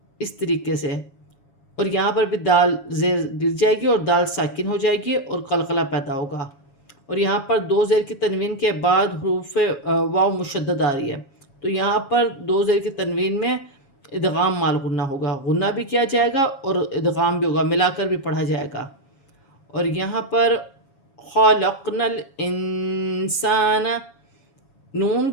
اس طریقے سے، اور یہاں پر بھی دال زیر گر جائے گی اور دال ساکن ہو جائے گی اور قلقلہ پیدا ہوگا، اور یہاں پر 2 زیر کی تنوین کے بعد حروف واو مشدد آ رہی ہے، تو یہاں پر 2 زیر کی تنوین میں ادغام مال غنہ ہوگا، غنہ بھی کیا جائے گا اور ادغام بھی ہوگا، ملا کر بھی پڑھا جائے گا۔ اور یہاں پر خلقنا الانسان، نون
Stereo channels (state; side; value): late; right; 7.2 ms